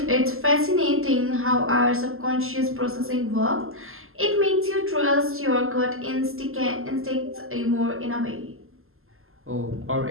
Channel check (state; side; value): late; left; 0.62 ms